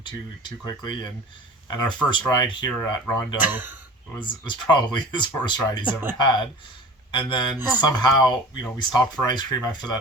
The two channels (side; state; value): both; normal; correlation 0.40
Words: too quickly. And our first ride here at Rondeau was probably his worst ride he's ever had. And then somehow, we stopped for ice cream after